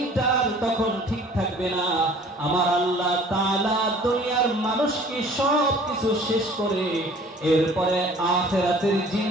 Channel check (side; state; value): both; normal; correlation 0.50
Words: তখন ঠিক থাকবে না। আমার আল্লাহ তাআলা দুনিয়ার মানুষকে সব কিছু শেষ করে এরপরে আখিরাতের